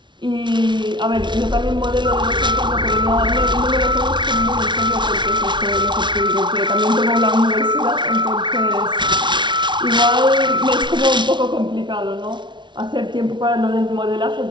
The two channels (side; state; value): left; late; 0.23 ms